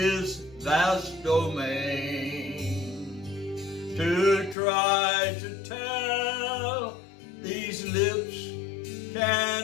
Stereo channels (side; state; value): right; drops out; at 4.5 s